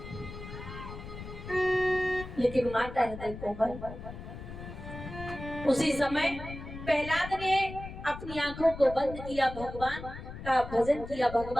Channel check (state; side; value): noise; left; rumble, 11 dB below the sound